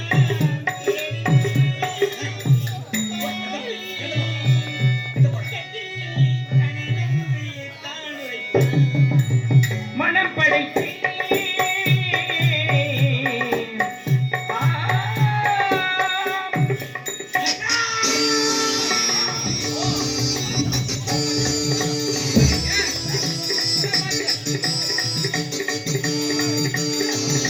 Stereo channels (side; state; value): both; identical; correlation 1.00